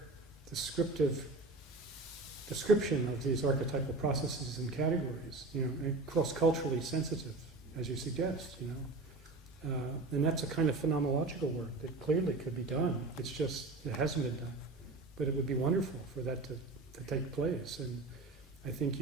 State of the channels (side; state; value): left; quieter; 3.2 dB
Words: description of these archetypal processes and categories, and cross-culturally sensitive, as you suggest, and that's a kind of phenomenological work that clearly could be done. It's just, it hasn't been done. But it would be wonderful for that to take place. And I think